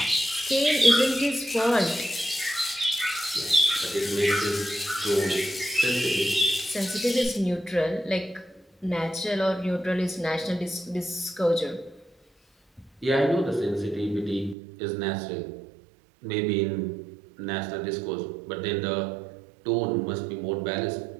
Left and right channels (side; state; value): left; drops out; at 14.6 s